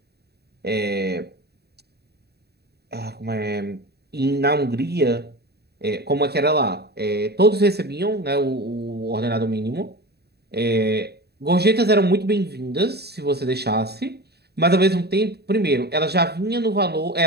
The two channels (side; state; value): left; late; 0.47 ms